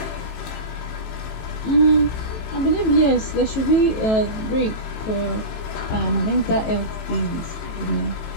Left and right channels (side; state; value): right; late; 18 ms